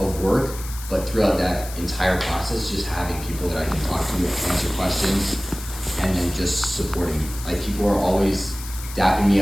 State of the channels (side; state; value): left; noise; hiss, 13 dB below the sound